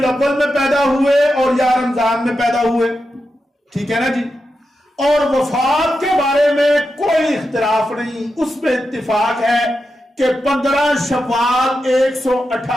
میں پیدا ہوئے اور یا رمضان میں پیدا ہوئے. ٹھیک ہے نا جی. اور وفات کے بارے میں کوئی اختلاف نہیں. اس میں اتفاق ہے کہ 15 شوال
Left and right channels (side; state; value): both; normal; correlation 0.89